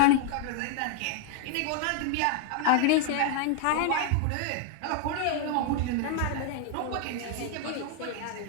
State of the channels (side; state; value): both; different; correlation 0.00